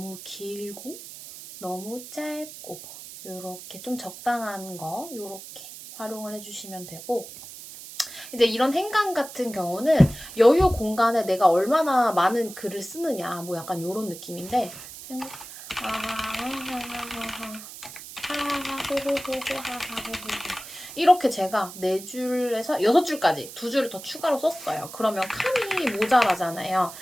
길고 너무 짧고 요렇게 좀 적당한 거 요렇게 활용을 해주시면 되고, 이제 이런 행간 같은 경우는 여유 공간에 내가 얼마나 많은 글을 쓰느냐 뭐 약간 요런 느낌인데, 이렇게 제가 4줄에서 6줄까지 2줄을 더 추가로 썼어요. 그러면 칸이 모자라잖아요.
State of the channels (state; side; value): noise; right; hiss, 14 dB below the sound